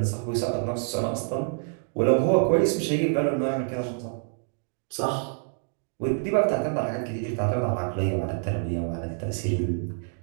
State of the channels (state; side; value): silent; left; 60 dB below the other